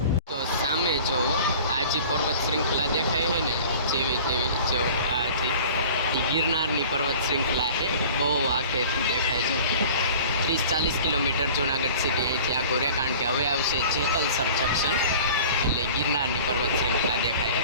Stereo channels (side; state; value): both; inverted; correlation -0.44